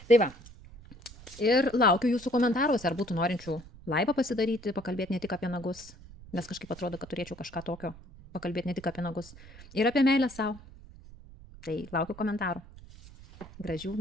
Tai va, ir laukiu jūsų komentaruose, ar būtų norinčių laivą pasidaryti, pakalbėti ne tik apie nagus, nes kažkaip atrodo, kad turėčiau kažką tokio, pakalbėti ne tik apie nagus, ir apie meilę savo. Tai laukiu komentarų. Gražių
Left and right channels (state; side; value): noise; right; rumble, 19 dB below the sound